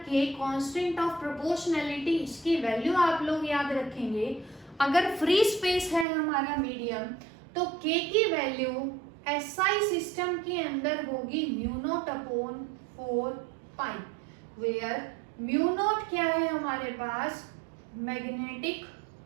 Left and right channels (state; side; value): drops out; left; at 6.1 s